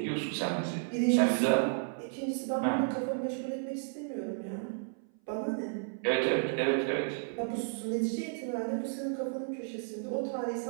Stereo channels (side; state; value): left; silent; 56 dB below the other